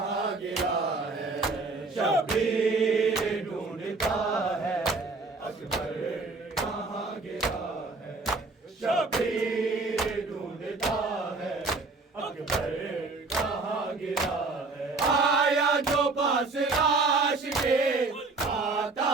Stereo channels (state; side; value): quieter; left; 3.7 dB